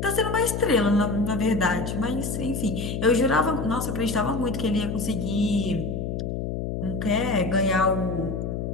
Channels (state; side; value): noise; left; hum, 3 dB below the sound